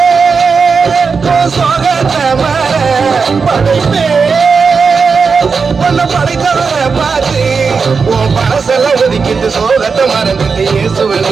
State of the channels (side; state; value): left; quieter; 5.2 dB